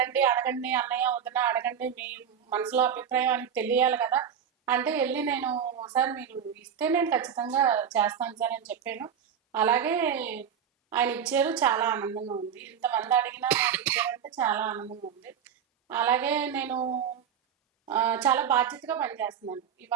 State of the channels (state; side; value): quieter; left; 8.1 dB